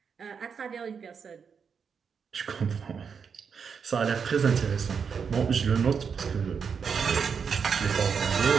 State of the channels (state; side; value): quieter; left; 6.3 dB